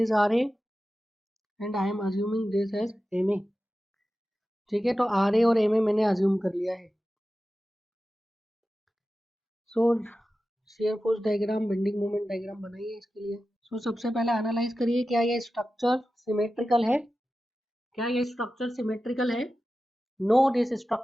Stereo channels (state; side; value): normal; both; correlation 0.94